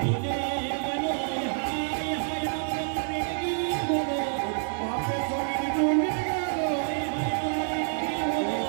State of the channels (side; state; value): left; silent; digital silence